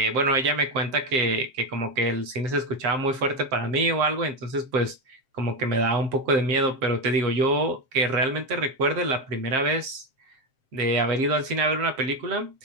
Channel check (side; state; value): left; late; 7.6 ms